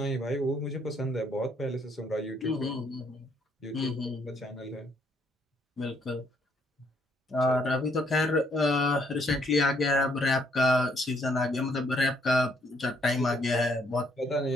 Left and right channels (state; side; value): normal; both; correlation 0.68